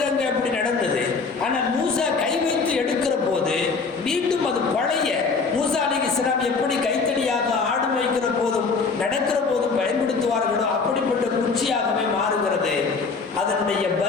அங்கே அப்படி நடந்தது. ஆனால் மூசா கை வைத்து எடுக்கிற போது மீண்டும் அது பழைய மூசா அலைஹிஸ்ஸலாம் எப்படி கைத்தடியாக ஆடு வைக்கிற போதும் நடக்கிற போதும் பயன்படுத்துவார்களோ அப்படிப்பட்ட குச்சியாகவே மாறுகிறது. அதனுடைய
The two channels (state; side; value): quieter; right; 4.6 dB